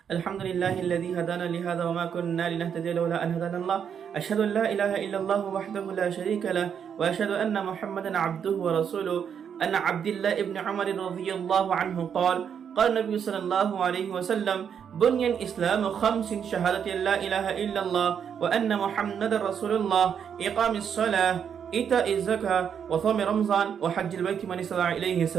الحمد لله الذي هدانا لهذا وما كنا لنهتدي لولا أن هدانا الله أشهد أن لا إله إلا الله وحده لا شريك له وأشهد أن محمدا عبده ورسوله أن عبد الله ابن عمر رضي الله عنه قال النبي صلى الله عليه وسلم بني الإسلام خمس شهادة لا إله إلا الله وأن محمد رسول الله إقام الصلاة إيتاء الزكاة وصوم رمضان وحج البيت من استطاع إليه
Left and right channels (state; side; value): quieter; left; 7.8 dB